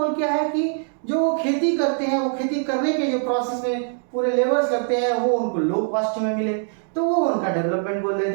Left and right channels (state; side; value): silent; left; 64 dB below the other